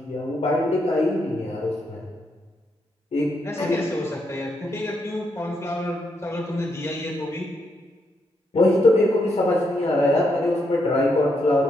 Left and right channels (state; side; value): normal; both; correlation 0.79